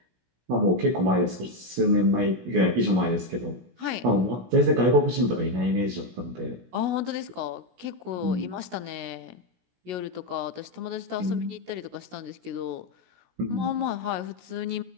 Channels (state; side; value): late; left; 16 ms